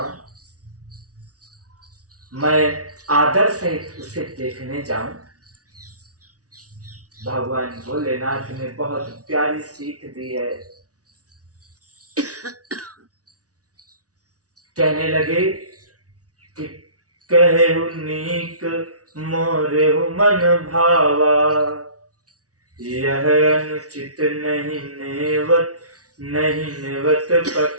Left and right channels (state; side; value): late; left; 0.68 ms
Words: मैं आदर सहित उसे देखने जाऊं। भगवान भोलेनाथ ने बहुत प्यारी सीख दी है। कहने लगे कि कहेहु नीक मोरेहु मन भावा, यह अनुचित नहीं नेवत